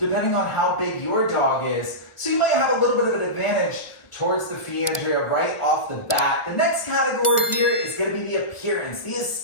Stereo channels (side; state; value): right; late; 1.4 ms